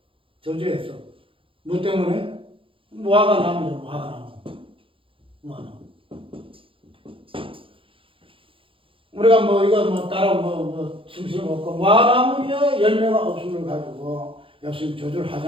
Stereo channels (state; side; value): late; left; 0.26 ms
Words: 저주했어. 뭐 때문에? 무화과 나무죠, 무화과 나무. 무화과 나무. 우리가 뭐 이거 뭐 따로 뭐 숨쉬는 거 없고 무화과나무에 열매가 없음을 가지고 예수님 저주를